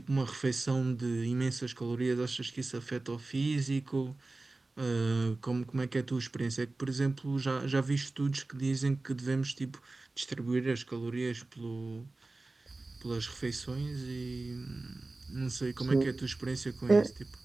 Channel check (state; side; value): quieter; left; 3.2 dB